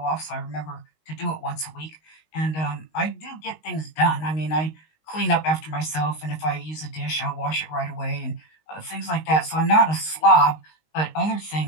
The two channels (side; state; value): right; late; 19 ms